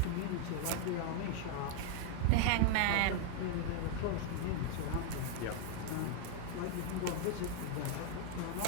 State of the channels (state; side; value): different; both; correlation 0.00